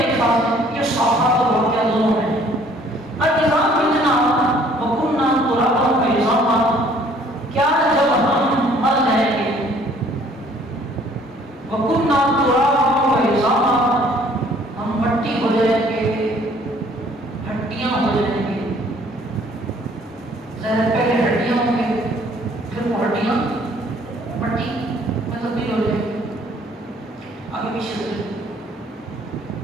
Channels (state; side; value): normal; both; correlation 0.58